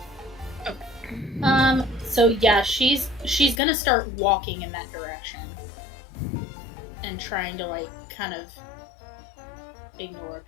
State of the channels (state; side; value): drops out; right; at 3.6 s